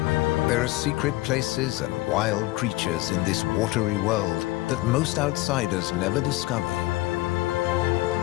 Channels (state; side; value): quieter; right; 19.6 dB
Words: There are secret places and wild creatures in this watery world that most outsiders never discover.